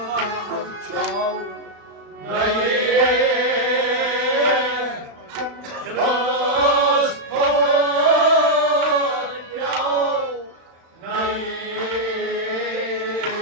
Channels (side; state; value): left; late; 35 ms